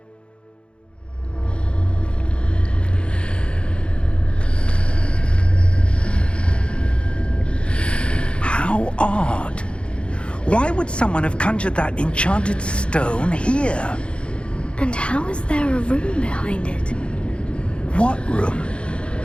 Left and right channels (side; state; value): right; late; 0.057 ms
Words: How odd. Why would someone have conjured that enchanted stone here? And how is there a room behind it? What room?